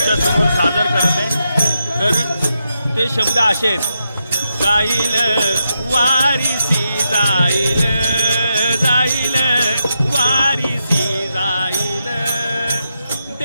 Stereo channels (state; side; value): inverted; both; correlation -0.84